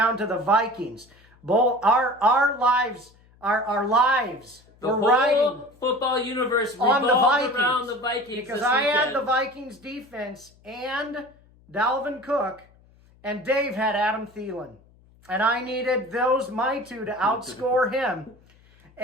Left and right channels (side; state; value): left; noise; hum, 29 dB below the sound